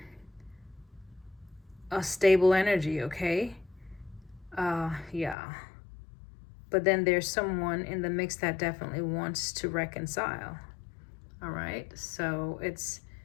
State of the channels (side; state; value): right; drops out; at 5.4 s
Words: stable energy, okay? Yeah. But then there's someone in the mix that definitely wants to reconcile. All right. So it's